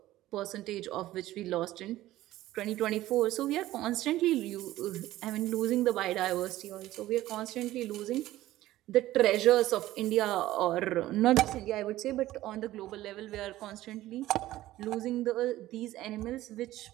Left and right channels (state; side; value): quieter; left; 15.4 dB